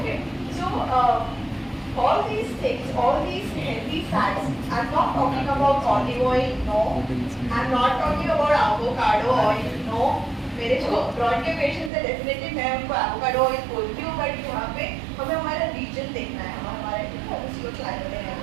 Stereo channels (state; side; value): drops out; left; at 11.9 s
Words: so all these things, all these healthy fats, I'm not talking about olive oil, no. I'm not talking about avocado oil, no. मेरे जो ब्रॉड के पेशेंट्स है डेफिनेटली मैं उनको एवोकाडो ऑयल बोलती हूँ, बट यहाँ पे हमें हमारा रीजन देखना है, हमारे उसको क्लाइमेट है.